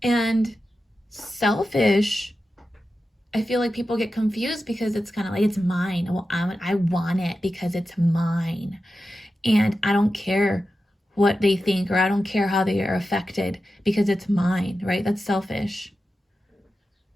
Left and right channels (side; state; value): both; normal; correlation 0.92